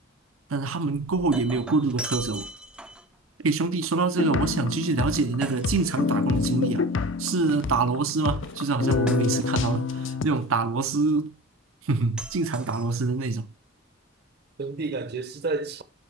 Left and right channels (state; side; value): normal; both; correlation 0.35